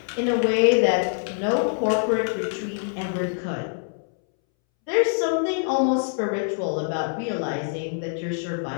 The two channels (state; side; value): silent; right; 62 dB below the other